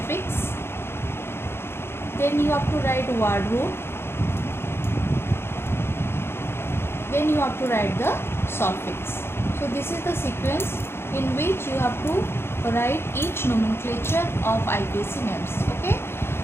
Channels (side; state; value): right; late; 0.12 ms